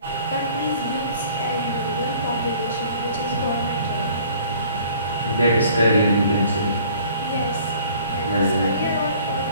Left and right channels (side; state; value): both; inverted; correlation -0.53